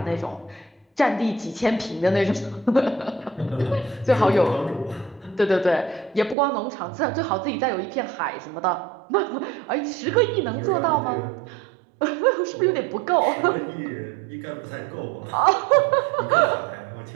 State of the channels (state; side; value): drops out; left; at 6.4 s